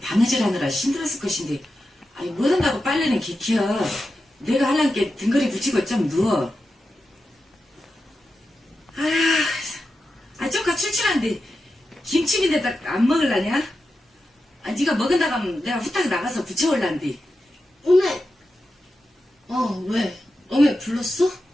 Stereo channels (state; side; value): normal; both; correlation 0.90